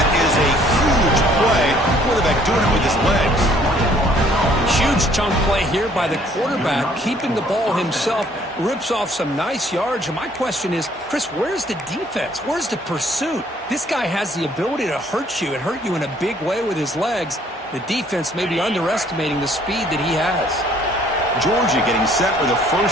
is a huge play. Quarterback doing it with his legs. Huge chunk play here by the quarterback, keeping the ball himself, rips off some nice yards. And my question is, Chris, where's the defense? Where's the pursuit? This guy has the ability to hurt you and hurt you in a big way with his legs. The defense may be underestimating the speed that he has. Georgia getting set with a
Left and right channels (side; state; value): both; normal; correlation 0.61